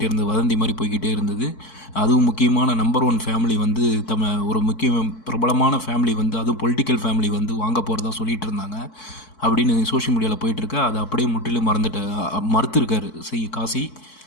இருந்தது, வதந்தி மாதிரி போய்கிட்டே இருந்தது. அதுவும் முக்கியமான நம்பர் 1 ஃபேமிலி ஒரு முக்கிய பிரபலமான ஃபேமிலி அதுவும் பொலிட்டிக்கல் ஃபேமிலி வாங்க போகிறதா சொல்லிகிட்டு இருந்தாங்க அப்படின்னு சோஷியல் மீடியாவில் போயிட்டுருக்கு. அதை அப்படியே முற்றிலும் மறுத்துருக்காரு காசி.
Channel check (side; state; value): right; late; 4.6 ms